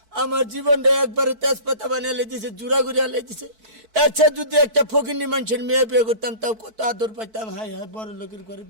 আমার জীবনটা একবারে তেজপাতা বানিয়ে দিছে জুড়া ঘুরিয়া দিছে এর চেয়ে যদি একটা ফকিনি মানুষের মেয়ে বিয়ে করতাম তাও কত আদর পাইতাম হাই হাই বড় লোকের ঘরে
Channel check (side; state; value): left; late; 4.6 ms